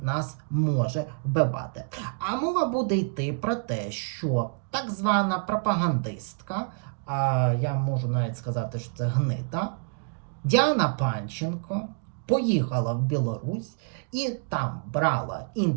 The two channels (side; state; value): left; quieter; 39.9 dB